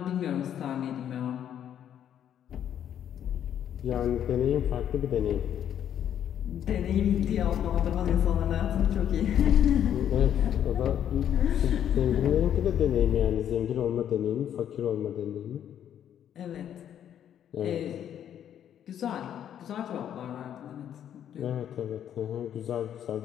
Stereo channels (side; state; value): right; quieter; 9.9 dB